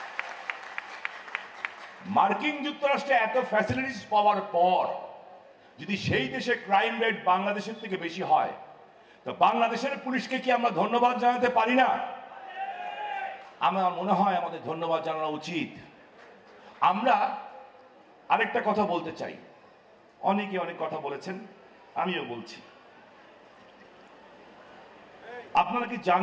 মার্কিন যুক্তরাষ্ট্রে এত ফ্যাসিলিটিস পাওয়ার পর যদি সেই দেশে ক্রাইম রেট বাংলাদেশের থেকে বেশি হয়, তো বাংলাদেশের পুলিশকে কি আমরা ধন্যবাদ জানাতে পারি না? আমার মনে হয় আমাদের ধন্যবাদ জানানো উচিত। আমরা আরেকটা কথা বলতে চাই, অনেকে অনেক কথা বলেছেন, আমিও বলছি। আপনারা কি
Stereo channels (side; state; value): both; identical; correlation 1.00